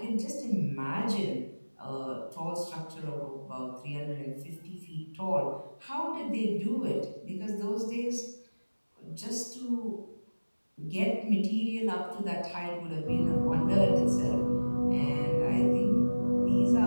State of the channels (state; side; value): inverted; both; correlation -1.00